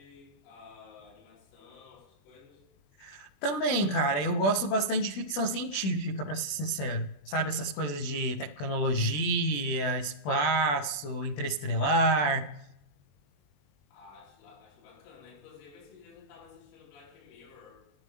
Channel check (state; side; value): late; right; 20 ms